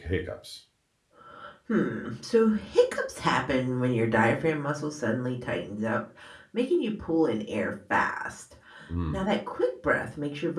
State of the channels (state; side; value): identical; both; correlation 1.00